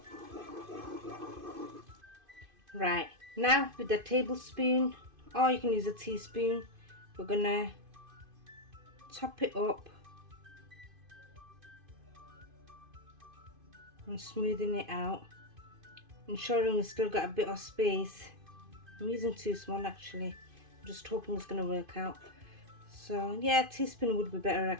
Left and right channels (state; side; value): late; left; 2.5 ms